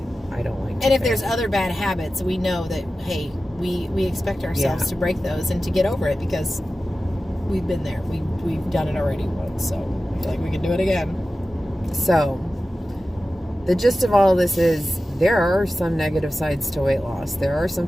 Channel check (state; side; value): normal; both; correlation 0.94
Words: I don't like to And if there's other bad habits, we know that, hey, we expect ourselves to break those and to get over it because we've been there. We've done it already once, so I feel like we can do it again. So, the gist of all of this is there are some negative sides to weight loss. There are some